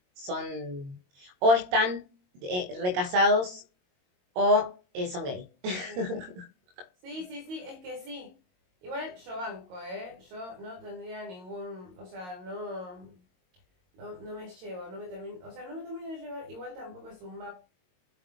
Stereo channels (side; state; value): left; late; 22 ms